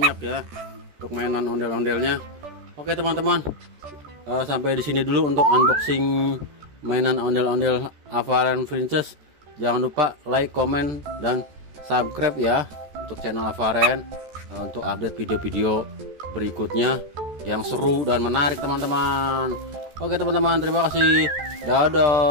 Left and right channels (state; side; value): late; left; 14 ms